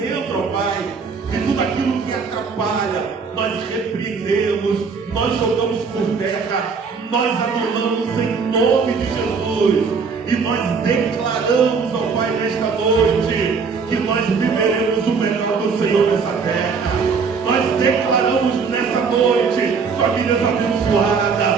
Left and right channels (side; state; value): left; quieter; 5.4 dB